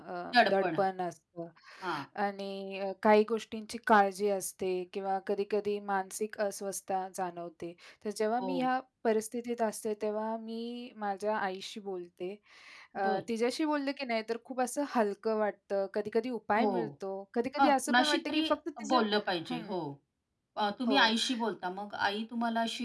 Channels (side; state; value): both; identical; correlation 1.00